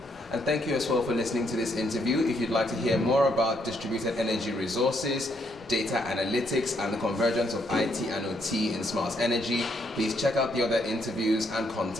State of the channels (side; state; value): both; normal; correlation 0.73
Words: And thank you as well for listening to this interview. If you'd like to hear more about distributed energy resources, data analytics, and the convergence of IT and OT in smart energy, please check out the other interviews and